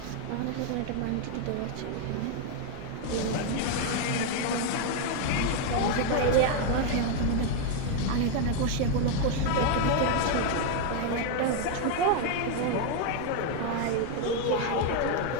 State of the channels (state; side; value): different; both; correlation 0.00